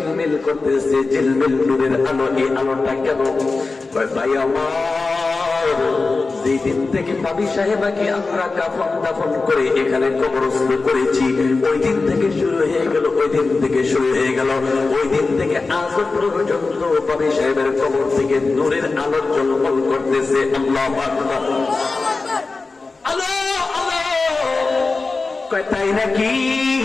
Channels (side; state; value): right; quieter; 3.9 dB